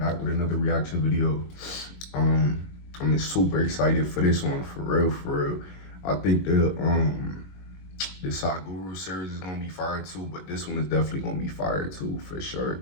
with another reaction video. I'm super excited for this one, for real. I think the Sakura series is gonna be fire too, but this one is definitely gonna be fire too, for sure,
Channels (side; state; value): right; late; 22 ms